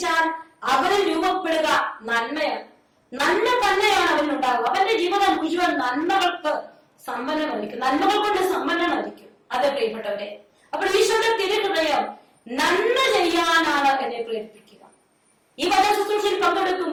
അവന് രൂപപ്പെടുക നന്മയാണ്. നന്മ തന്നെയാണ് അവനുണ്ടാവുക. അവന്റെ ജീവിതം മുഴുവൻ നന്മകൾക്ക് സമ്പന്നമായിരിക്കും, നന്മകൾ കൊണ്ട് സമ്പന്നമായിരിക്കും. അതെ പ്രിയപ്പെട്ടവരെ, അപ്പോൾ ഈശോയുടെ തിരുഹൃദയം നന്മ ചെയ്യാനാണ് എന്നെ പ്രേരിപ്പിക്കുക. ഈ വചന ശുശ്രൂഷയിൽ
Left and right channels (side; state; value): both; identical; correlation 1.00